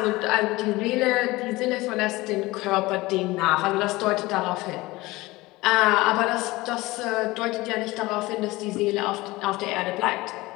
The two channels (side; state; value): right; quieter; 20.5 dB